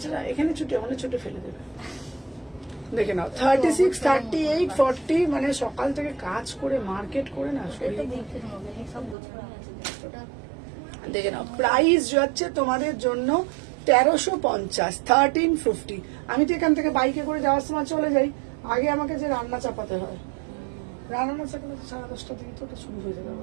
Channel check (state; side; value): drops out; left; at 9.2 s